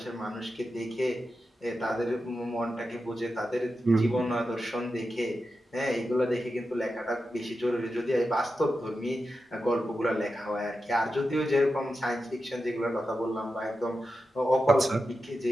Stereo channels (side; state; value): both; normal; correlation 0.90